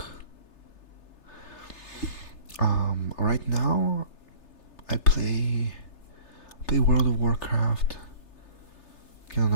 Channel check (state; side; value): late; right; 3.3 ms